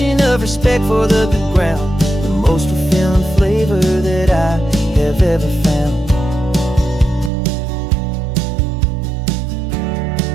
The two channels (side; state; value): left; drops out; at 7.3 s